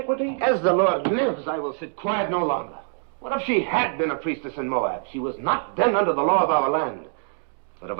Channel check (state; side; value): silent; left; 62 dB below the other